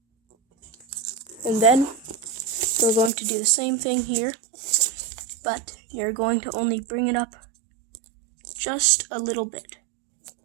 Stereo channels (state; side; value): drops out; left; at 3.1 s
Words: And then, we're going to do the same thing here, but you're going to only bring it up just a little bit.